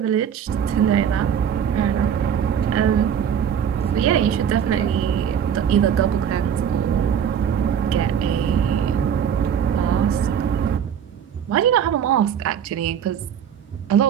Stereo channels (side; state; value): left; quieter; 8.5 dB